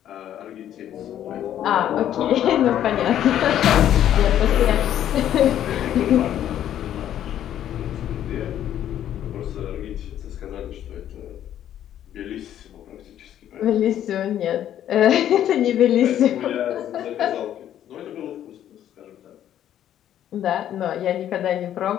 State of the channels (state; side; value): quieter; right; 11.0 dB